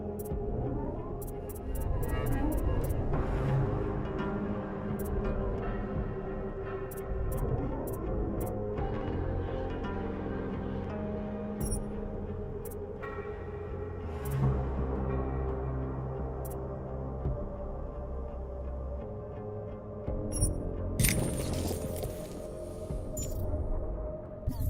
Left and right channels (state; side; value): identical; both; correlation 1.00